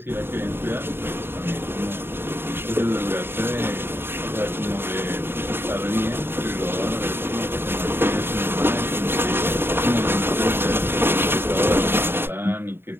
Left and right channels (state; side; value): late; left; 0.11 ms